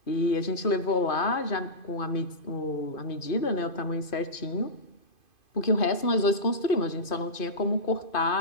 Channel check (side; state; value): right; late; 2.5 ms